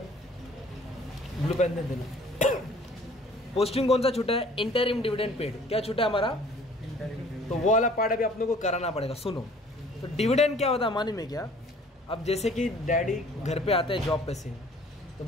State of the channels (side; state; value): both; normal; correlation 0.53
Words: ब्लू पेन दे देना। पोस्टिंग कौन सा छूटा है? Interim dividend paid. क्या छूटा है हमारा? तो वो वाला पार्ट अभी अपने को कराना पड़ेगा। सुनो, तो डिविडेंड क्या होता है मानी में क्या, अब जैसे कि डैडी घर पे आते हैं जॉब पे से, तो